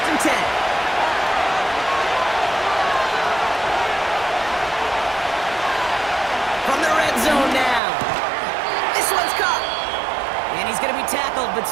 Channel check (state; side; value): drops out; left; at 7.8 s